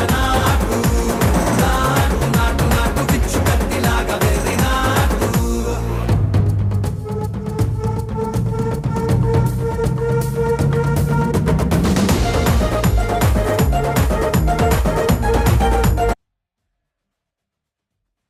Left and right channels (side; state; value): both; identical; correlation 1.00